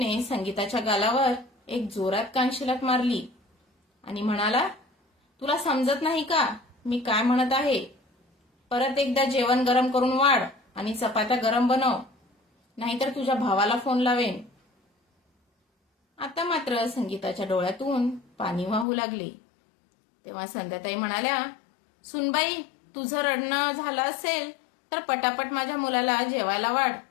संगीताच्या गालावर एक जोरात कानशिलात मारली आणि म्हणाला, तुला समजत नाही का मी काय म्हणत आहे? परत एकदा जेवण गरम करून वाढ आणि चपात्या गरम बनव, नाहीतर तुझ्या भावाला फोन लावेन. आता मात्र संगीताच्या डोळ्यातून पाणी वाहू लागले. तेव्हा संध्याताई म्हणाल्या, सुनबाई, तुझं रडणं झालं असेल तर पटापट माझ्या मुलाला जेवायला वाढ.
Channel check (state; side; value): drops out; right; at 18.9 s